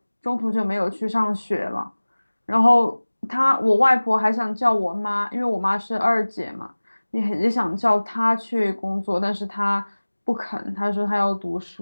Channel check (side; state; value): both; inverted; correlation -1.00